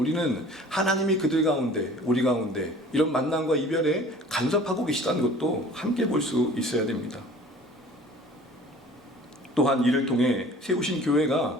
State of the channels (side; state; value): both; normal; correlation 0.47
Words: 하나님이 그들 가운데, 우리 가운데 이런 만남과 이별에 간섭하고 계시다는 것도 함께 볼 수 있어야 됩니다. 또한 이를 통해 세우신